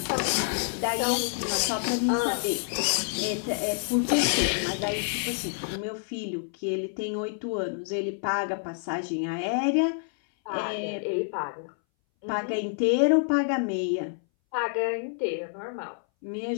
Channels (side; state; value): right; silent; 59 dB below the other